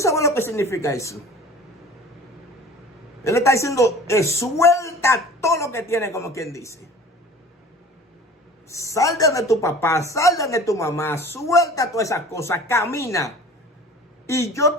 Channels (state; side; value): normal; both; correlation 0.43